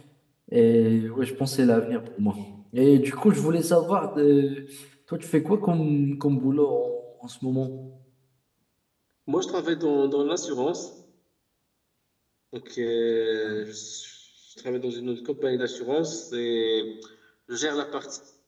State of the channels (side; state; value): both; identical; correlation 1.00